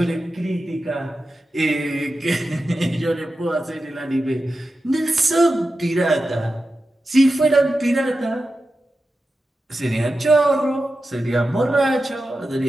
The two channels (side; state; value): both; normal; correlation 0.92